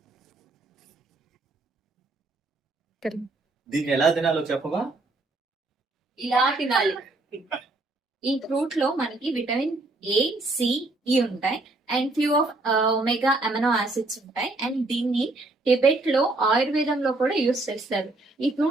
దీన్ని ఎలా తినాలో చెప్పవా? ఇలా తినాలి. ఈ ఫ్రూట్ లో మనకి విటమిన్ ఏ, సి, ఈ ఉంటాయి and few of omega amino acids ఉంటాయి అండ్ దీన్ని టిబెట్ లో ఆయుర్వేదంలో కూడా యూస్ చేస్తారు. ఈ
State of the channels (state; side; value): quieter; left; 3.0 dB